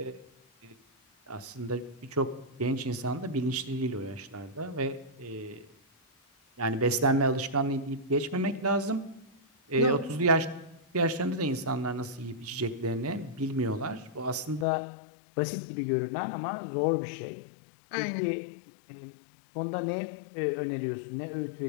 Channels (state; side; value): drops out; right; at 14.7 s